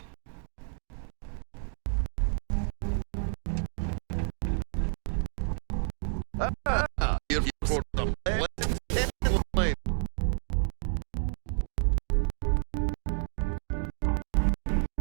You're for the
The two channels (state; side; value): silent; left; 58 dB below the other